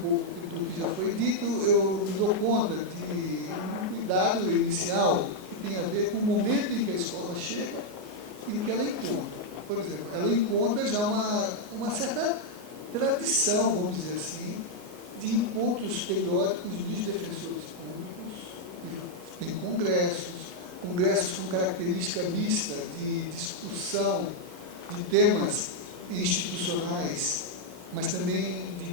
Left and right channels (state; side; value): late; left; 33 ms